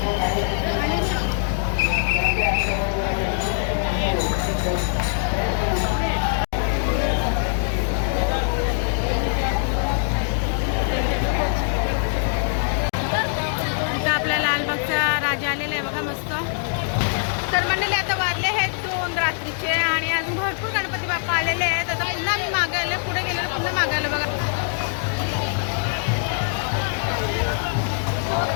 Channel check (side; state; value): right; silent; digital silence